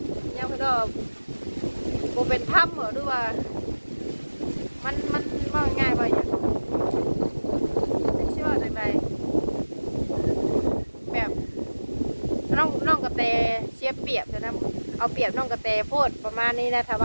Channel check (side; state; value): both; inverted; correlation -1.00